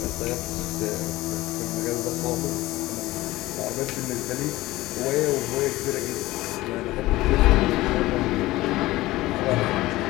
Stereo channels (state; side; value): quieter; right; 18.0 dB